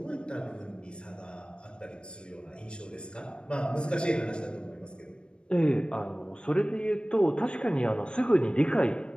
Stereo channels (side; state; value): right; late; 0.055 ms